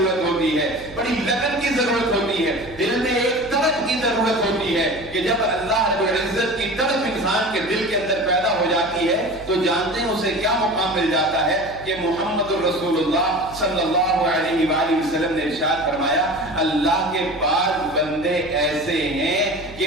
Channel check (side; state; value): right; noise; hum, 18 dB below the sound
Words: ہوتی ہے، بڑی لگن کی ضرورت ہوتی ہے، دل میں ایک طلب کی ضرورت ہوتی ہے کہ جب اللہ رب العزت کی طلب انسان کے دل کے اندر پیدا ہو جاتی ہے تو جانتے ہیں اسے کیا مقام مل جاتا ہے کہ محمد الرسول اللہ صلی اللہ علیہ وآلہ وسلم نے ارشاد فرمایا، اللہ کے بعض بندے ایسے ہیں